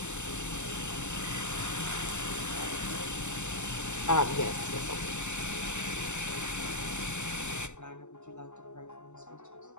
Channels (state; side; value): late; right; 0.83 ms